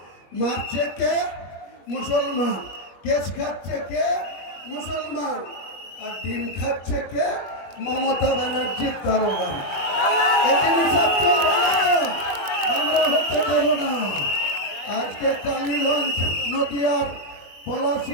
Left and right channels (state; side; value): late; right; 21 ms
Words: মারছে কে? মুসলমান। কেস খাচ্ছে কে? মুসলমান। আর ডিম খাচ্ছে কে? মমতা ব্যানার্জির কারণে। এদিন সব চলবে না, আমরা হতে দেব না। আজকে কালীগঞ্জ নদিয়ার